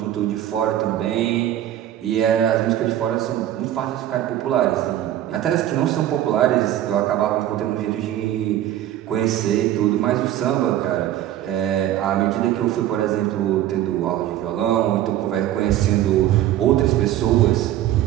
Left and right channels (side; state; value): left; quieter; 12.6 dB